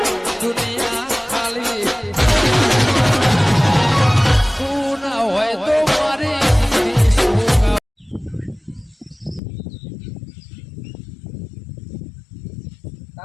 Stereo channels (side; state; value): right; drops out; at 9.4 s